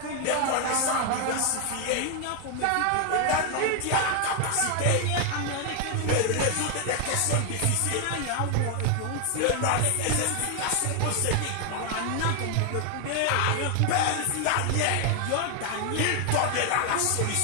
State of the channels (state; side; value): different; both; correlation 0.00